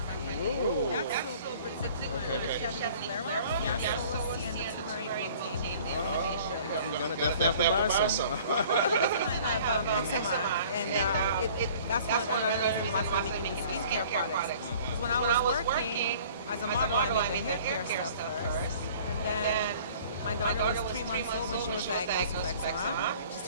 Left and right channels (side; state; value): both; inverted; correlation -0.51